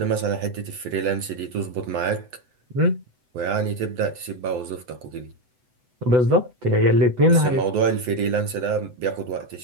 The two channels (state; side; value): late; left; 8.0 ms